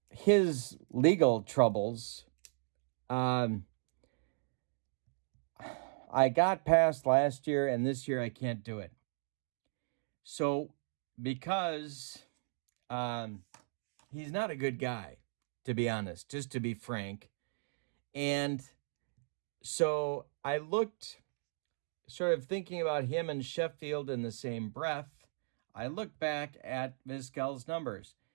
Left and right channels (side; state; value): left; silent; digital silence